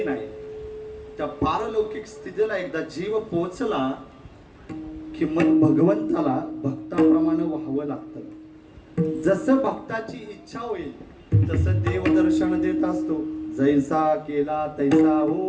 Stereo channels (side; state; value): both; identical; correlation 1.00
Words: नाही, त्या पारलौकिक स्थितीला एकदा जीव पोहोचला की मग भगवंताला भक्ताप्रमाणे व्हावं लागतं. जसं भक्ताची इच्छा होईल तसं देव दर्शन देत असतो. जैसा केला तैसा